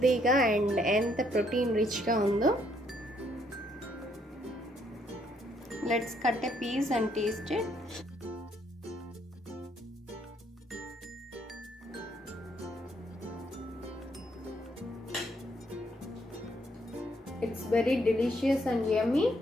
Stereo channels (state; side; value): normal; both; correlation 0.70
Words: అండ్ ఎంత protein రిచ్గా ఉందో. Let's cut a piece and taste it. It's very delicious and yummy.